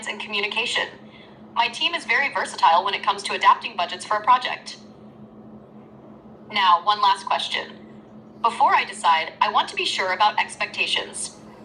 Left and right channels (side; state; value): both; identical; correlation 1.00